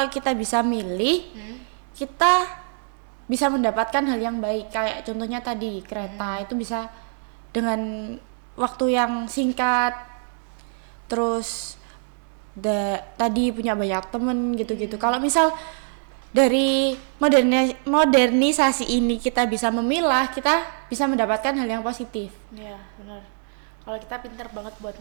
kita bisa milih, kita bisa mendapatkan hal yang baik. Kayak contohnya tadi kereta itu bisa dengan waktu yang singkat, terus tadi punya banyak temen gitu-gitu. Kalau misal dari modernisasi ini kita bisa memilah, kita bisa mendapatkan hal yang positif. Ya benar. Kalau kita pintar banget buat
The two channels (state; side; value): silent; left; 59 dB below the other